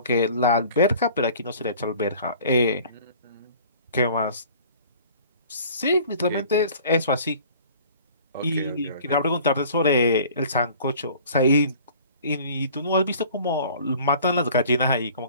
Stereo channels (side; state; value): both; inverted; correlation -0.49